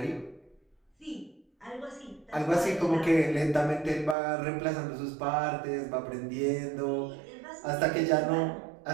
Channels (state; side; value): drops out; left; at 4.2 s